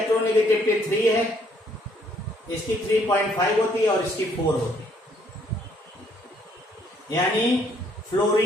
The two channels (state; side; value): normal; both; correlation 0.66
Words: 3 है, इसकी 3.5 होती है और इसकी 4 होती है। यानी